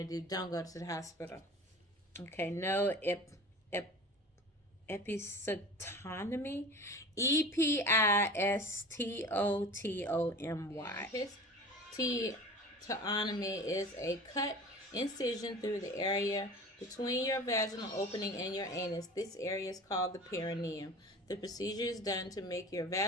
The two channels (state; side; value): normal; both; correlation 0.37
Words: to do, don't go to the hospital. Okay, no episiotomy. Epistotomy. Episiotomy is a cut incision through the area between your vaginal opening and your anus. This area is called the perineum. The procedure is done to make your